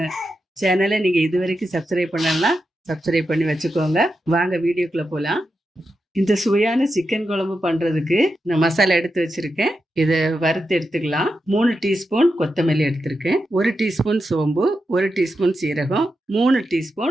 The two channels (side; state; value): both; normal; correlation 0.88